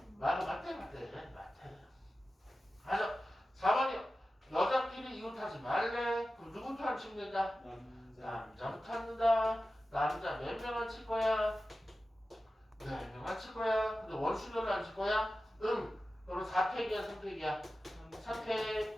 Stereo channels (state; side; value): normal; both; correlation 0.94